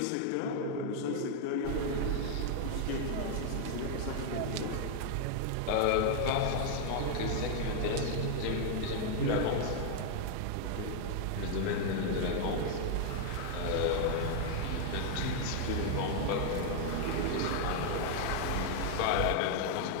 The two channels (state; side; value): different; both; correlation 0.00